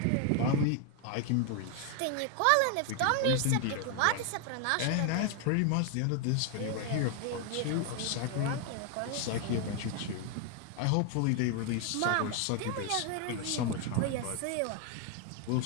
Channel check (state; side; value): different; both; correlation 0.00